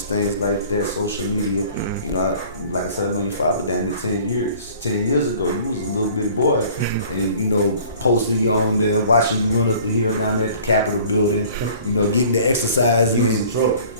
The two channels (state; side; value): inverted; both; correlation -0.50